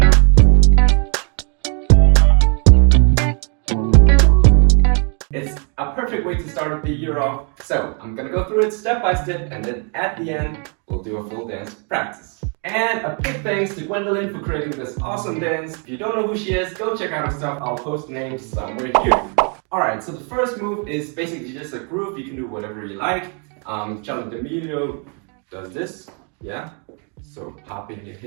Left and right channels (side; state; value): left; quieter; 38.2 dB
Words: It's a perfect way to start the year off, so I'm gonna go through it step by step, and then at the end, we'll do a full dance practice. And a big thanks to Gwendolyn for creating this awesome dance. If you don't know who she is, go check out her stuff. I'll post names somewhere here. Alright, so the first move is basically just a groove. You can do whatever you like. Charlie D'Amelio does this, yeah? So popping your